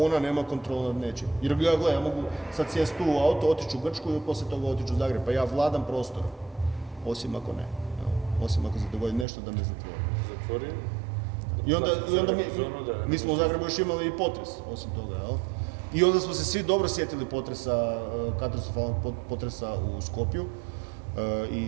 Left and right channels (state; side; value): drops out; left; at 9.2 s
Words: nema kontrolu nad nečim. Jer ja mogu sad sjesti tu u auto, otići u Grčku i poslije toga otići u Zagreb. Pa ja vladam prostorom. Osim ako ne. Osim ako se dogodi nešto da me zatvori. Zatvori? I onda mi smo u Zagrebu još imali i potres, osim toga, jel? I onda smo se svi dobro sjetili katastrofalnog potresa u Skopju